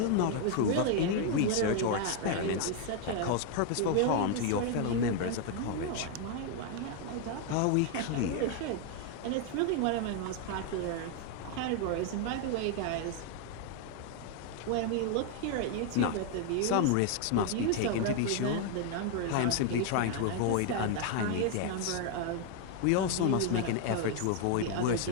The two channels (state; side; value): different; both; correlation 0.00